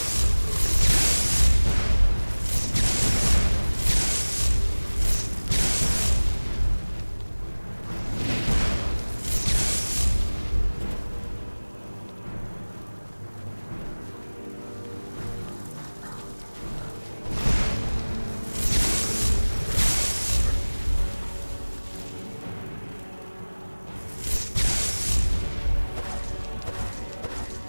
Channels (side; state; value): both; inverted; correlation -1.00